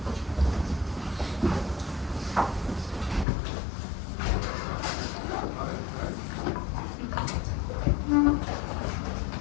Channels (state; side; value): drops out; right; at 3.2 s